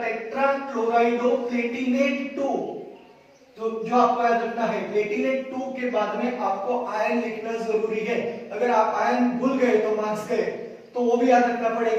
टेट्राक्लोराइडोप्लेटिनेट 2। तो जो आपको याद रखना है, प्लेटिनेट 2 के बाद में आपको आयन लिखना जरूरी है। अगर आप आयन भूल गए तो मार्क्स गए, तो वो भी याद रखना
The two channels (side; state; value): both; identical; correlation 1.00